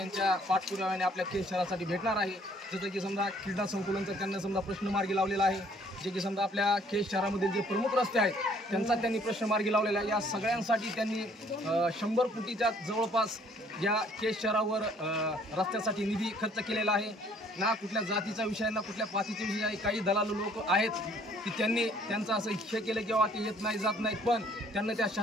पाठपुराव्याने आपल्या केज शहरासाठी भेटणार आहे. जसं की समजा क्रीडा संकुलनचा त्यांना समजा प्रश्न मार्गी लावलेला आहे. जे की समजा आपल्या केज शहरामधील जे प्रमुख रस्ते आहेत त्यांचा त्यांनी प्रश्न मार्गी लावलेला आहे. या सगळ्यांसाठी त्यांनी 100 कोटीच्या जवळपास या केज शहरावर रस्त्यासाठी निधी खर्च केलेला आहे. ना कुठल्या जातीचा विषय ना कुठल्या पातीचा विषय आहे. काही दलालू लोक आहेत की त्यांनी त्यांचं असं हे केलं किंवा ते येत नाही जात नाहीत, पण त्यांना त्या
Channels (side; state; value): both; normal; correlation 0.60